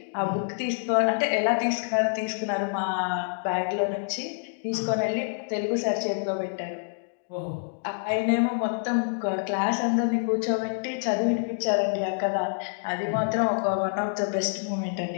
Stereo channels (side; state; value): right; silent; digital silence